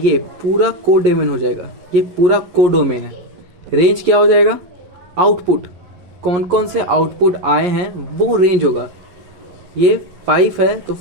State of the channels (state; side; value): late; left; 11 ms